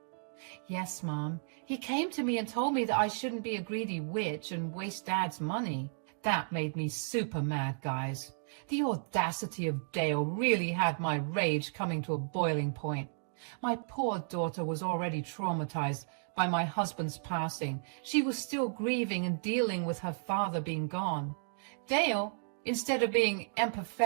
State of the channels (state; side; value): silent; left; digital silence